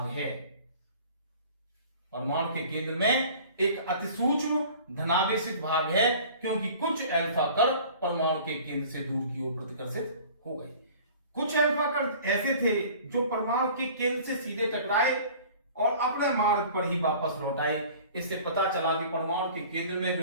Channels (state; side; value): inverted; both; correlation -0.46